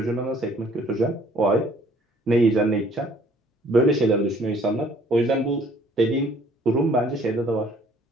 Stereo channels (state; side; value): normal; both; correlation 0.58